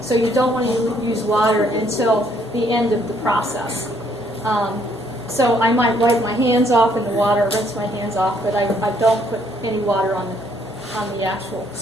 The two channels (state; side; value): normal; both; correlation 0.67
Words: So you don't want to use water until the end of the process. So I might wipe my hands off in the water, rinse my hands off, but I don't put any water on the actual